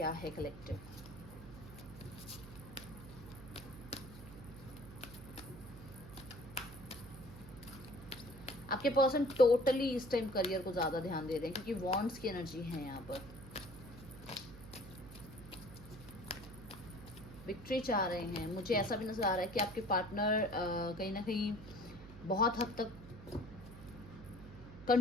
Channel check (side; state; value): right; noise; hum, 15 dB below the sound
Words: है कलेक्टिव। आपके पर्सन टोटली इस टाइम करियर को ज्यादा ध्यान दे रहे हैं, क्योंकि वॉन्ड्स की एनर्जी है यहाँ पर। विक्ट्री चाह रहे हैं। मुझे ऐसा भी नजर आ रहा है कि आपके पार्टनर कहीं ना कहीं बहुत हद तक